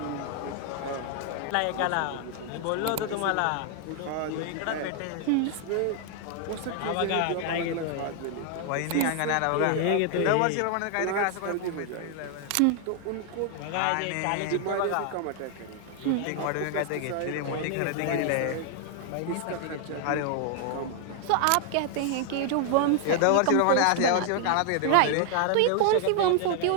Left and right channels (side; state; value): both; different; correlation 0.00